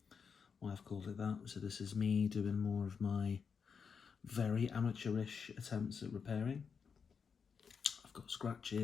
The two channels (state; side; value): quieter; right; 6.1 dB